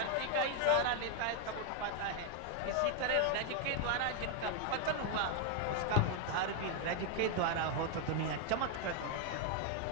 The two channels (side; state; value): both; different; correlation 0.01